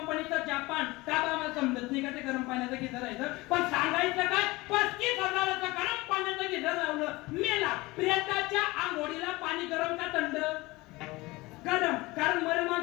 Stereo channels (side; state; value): right; quieter; 21.5 dB